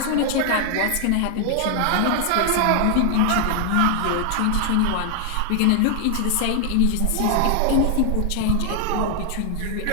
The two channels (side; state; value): both; different; correlation 0.00